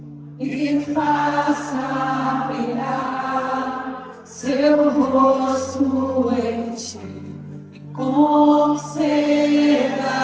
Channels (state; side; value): identical; both; correlation 1.00